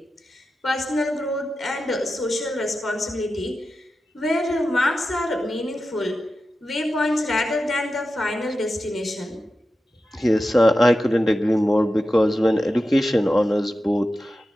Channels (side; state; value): both; normal; correlation 0.92